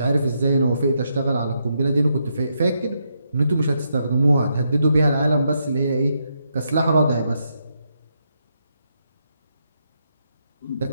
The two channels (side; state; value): both; inverted; correlation -0.80